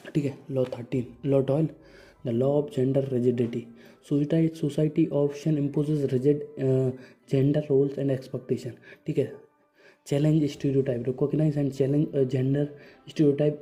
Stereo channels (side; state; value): both; identical; correlation 1.00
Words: ठीक है, law 13, law 12, the law of gender rigidity, society often imposes rigid gender roles and expectation. ठीक है, challenge stereotype, recognise and challenge gender stereotype